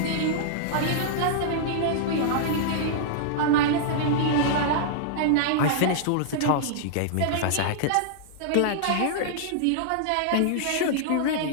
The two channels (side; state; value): both; different; correlation -0.02